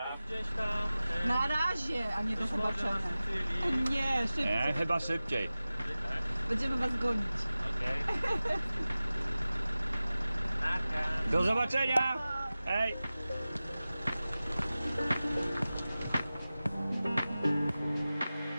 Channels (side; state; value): both; inverted; correlation -0.96